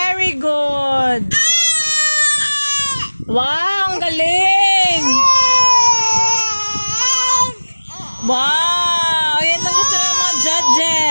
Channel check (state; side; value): inverted; both; correlation -1.00